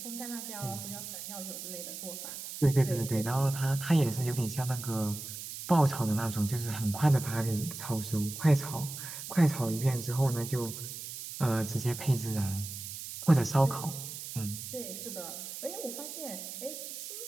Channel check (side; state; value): right; noise; hiss, 9 dB below the sound